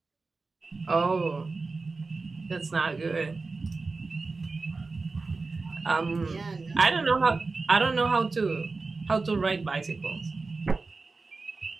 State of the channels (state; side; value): quieter; left; 3.9 dB